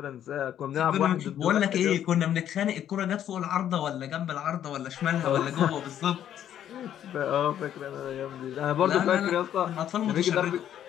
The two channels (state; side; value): quieter; right; 10.6 dB